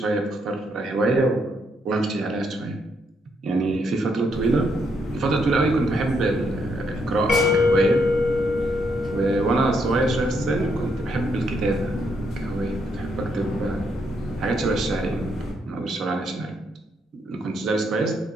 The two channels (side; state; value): both; normal; correlation 0.76